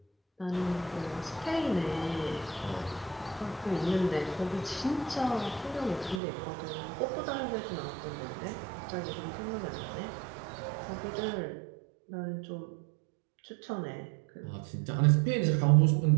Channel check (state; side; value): drops out; left; at 6.2 s